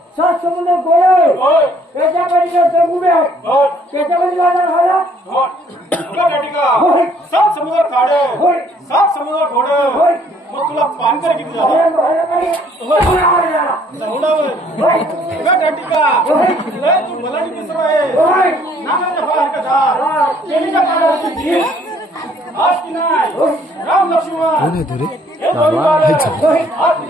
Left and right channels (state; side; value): normal; both; correlation 0.62